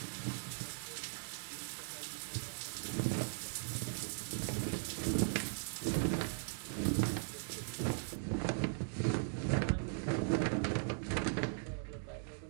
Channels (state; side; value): silent; left; digital silence